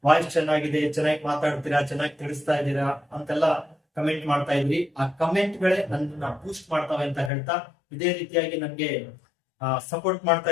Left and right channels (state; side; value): drops out; right; at 7.3 s